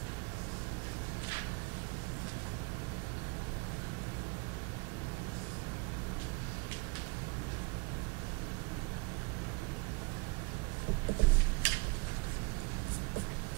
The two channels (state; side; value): quieter; left; 28.2 dB